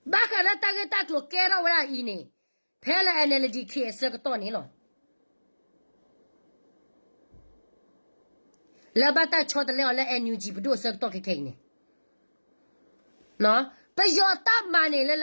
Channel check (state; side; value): inverted; both; correlation -1.00